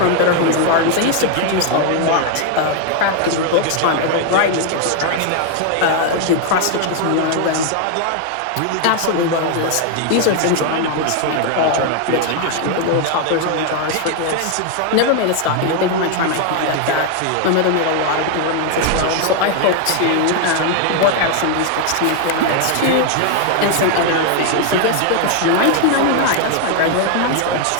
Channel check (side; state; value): both; different; correlation 0.00